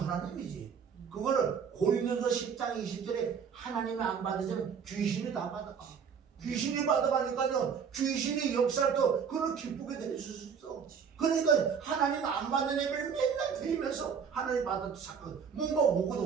하나님이지. 그거를 고린도서 10장 20절에 하나님이 안 받으시면 귀신이 다 받아가. 귀신이 받아가니까요, 귀신이 역사를 또 그걸 기쁘게 될 수 있어. 그러니까 하나님 안 받는 예배를 맨날 드리면서 하나님 받아도 자꾸 뭔가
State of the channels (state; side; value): quieter; left; 6.7 dB